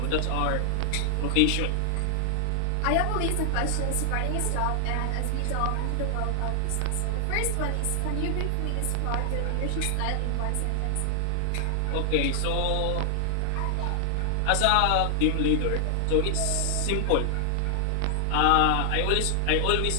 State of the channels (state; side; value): different; both; correlation 0.00